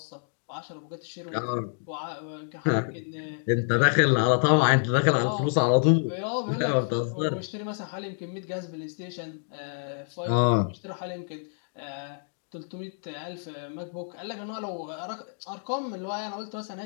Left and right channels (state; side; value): silent; right; digital silence